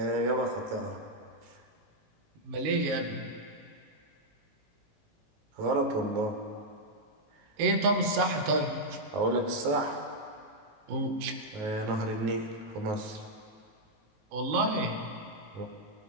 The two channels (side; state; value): left; late; 19 ms